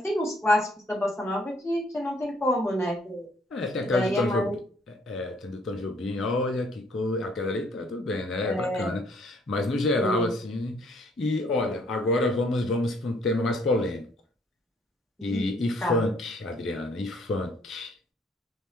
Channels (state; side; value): normal; both; correlation 0.64